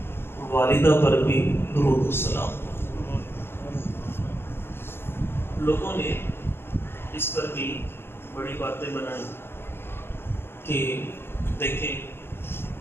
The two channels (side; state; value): right; late; 0.11 ms